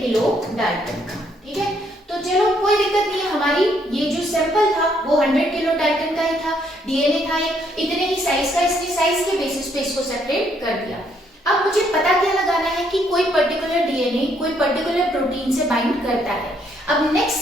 डाल्टन का। ठीक है, तो चलो कोई दिक्कत नहीं है, हमारी ये जो सैंपल था वो 100 किलो डाल्टन का ही था, DNA था इतने ही साइज का, इसने साइज के बेसिस पे इसको सेपरेट कर दिया। अब मुझे पता क्या लगाना है कि कोई पर्टिकुलर DNA कोई पर्टिकुलर प्रोटीन से बाइंड करता है। अब नेक्स्ट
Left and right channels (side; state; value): both; normal; correlation 0.70